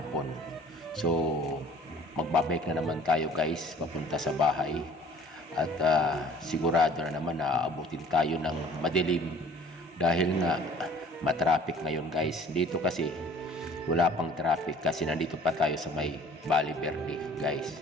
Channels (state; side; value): normal; both; correlation 0.51